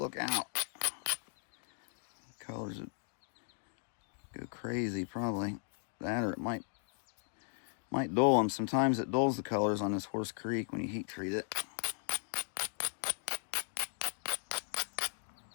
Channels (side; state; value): right; silent; 53 dB below the other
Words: out. Colors would go crazy, probably. That, or it might dull them. Sometimes it dulls the colors on this Horse Creek when you heat treat it.